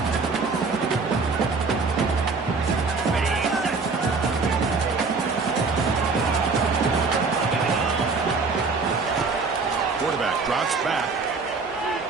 Quarterback drops back.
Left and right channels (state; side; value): quieter; left; 4.3 dB